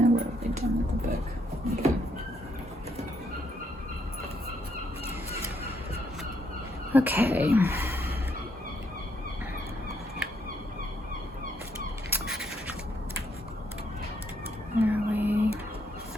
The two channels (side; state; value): both; normal; correlation 0.73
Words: they done with the book? Okay.